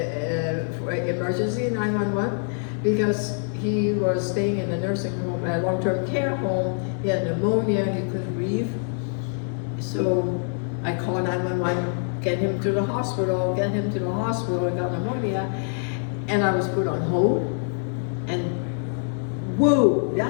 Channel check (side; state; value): right; silent; 62 dB below the other